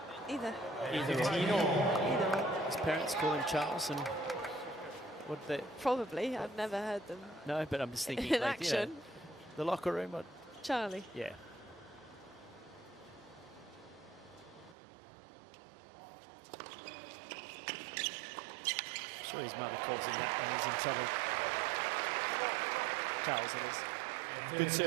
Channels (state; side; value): drops out; left; at 14.8 s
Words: Either. Either one. His parents call him Charles, and what they? Probably. I've never heard them. No, but I'm just thinking in like, action. You know, the locker room. Or, Charlie. Yeah. I'm sure his mother calls him that when he's in trouble. Charles, it is. Good